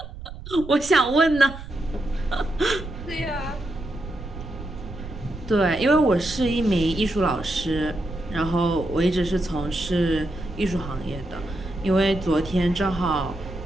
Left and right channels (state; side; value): noise; right; rumble, 12 dB below the sound